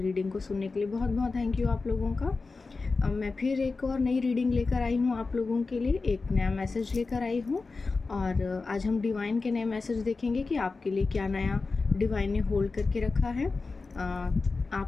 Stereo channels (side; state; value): right; quieter; 4.0 dB